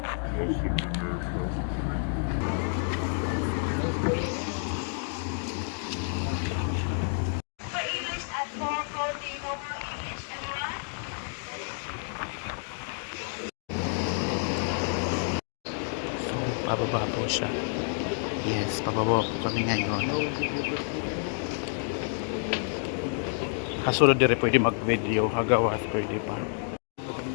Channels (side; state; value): right; silent; 58 dB below the other